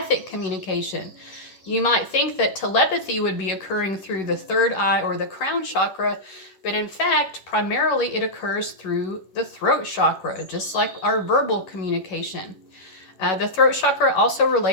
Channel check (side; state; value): right; late; 11 ms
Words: communication. You might think that telepathy would be occurring through the third eye or the crown chakra, but in fact, primarily it occurs through the throat chakra, just like our verbal communication. The throat chakra also